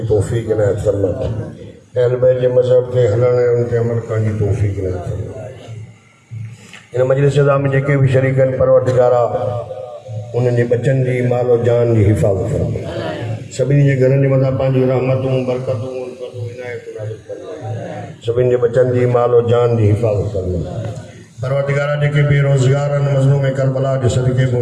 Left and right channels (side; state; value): both; identical; correlation 1.00